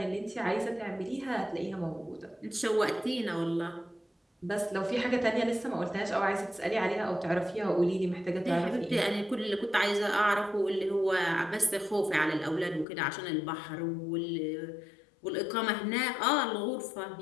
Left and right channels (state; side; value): drops out; right; at 12.9 s